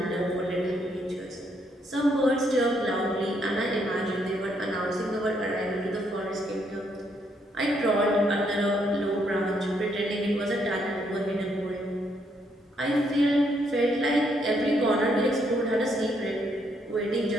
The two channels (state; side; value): normal; both; correlation 0.73